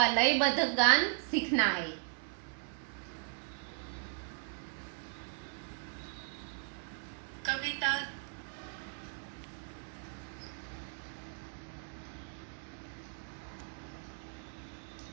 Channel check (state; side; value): silent; left; 53 dB below the other